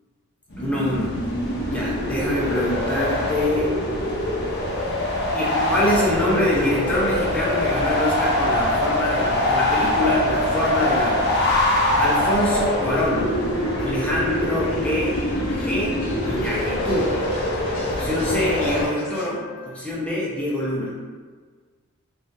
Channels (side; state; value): both; normal; correlation 0.18